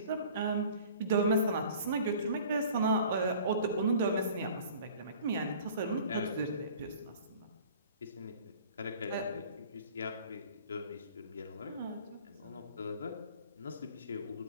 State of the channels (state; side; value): inverted; both; correlation -0.47